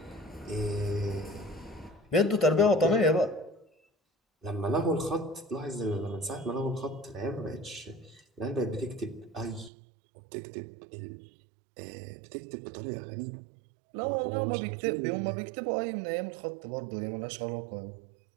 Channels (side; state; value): left; drops out; at 9.7 s